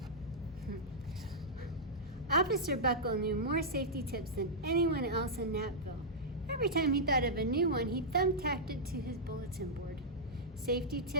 Officer Buckle knew more safety tips than anyone else in Napville. Every time he thought of a new one, he thumbtacked it to his bulletin board. Safety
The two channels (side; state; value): both; normal; correlation -0.09